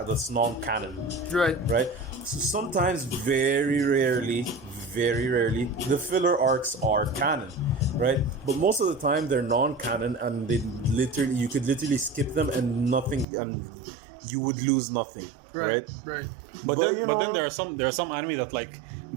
non-canon, Right. right? So sometimes, very rarely, the filler arcs are canon, right? But most of the time they're non-canon, and you could literally skip them and you would lose nothing, right? Right. But you know, then there are some anime that like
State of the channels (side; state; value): left; drops out; at 13.2 s